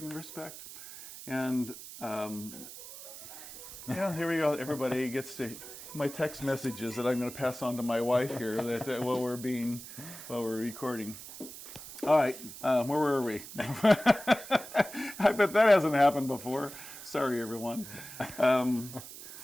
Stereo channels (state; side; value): noise; right; hiss, 13 dB below the sound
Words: respect. And here we go. Everybody gets to my text messages that I'm going to pass on to my wife here that while we're recording. All right, where were we? I bet that hasn't happened before. Sorry, everyone.